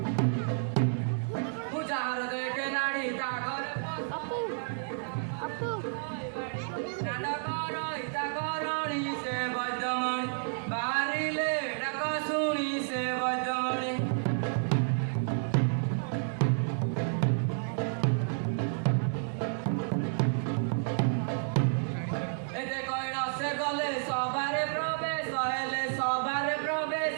ମୁଁ ଯାହାର ଦେଖେ ନାଡ଼ି ତା ଘରେ ନାଟକ ରହିତା କରଣି ସେ ବୈଦ୍ୟମଣି ବାହାରିଲେ ଡାକ ଶୁଣି ସେ ବୈଦ୍ୟମଣି এতে কইন সে গলে সবারে প্রবেশ হেলে সবারে প্রবেশ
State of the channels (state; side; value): silent; left; digital silence